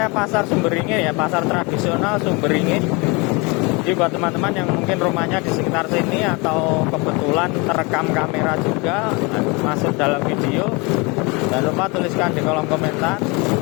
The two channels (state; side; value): quieter; right; 27.9 dB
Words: pasar Sumberingin ya, pasar tradisional Sumberingin. Jadi buat teman-teman yang mungkin rumahnya di sekitar sini atau kebetulan terekam kamera juga masuk dalam video, jangan lupa tuliskan di kolom komentar.